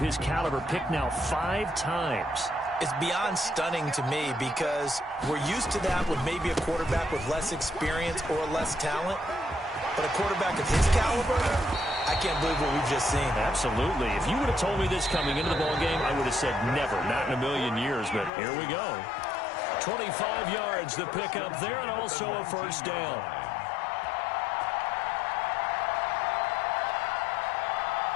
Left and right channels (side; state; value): right; drops out; at 18.3 s